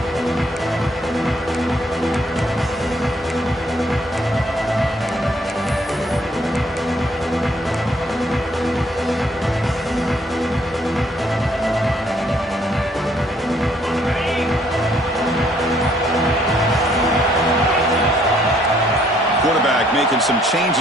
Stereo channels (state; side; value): normal; both; correlation 0.66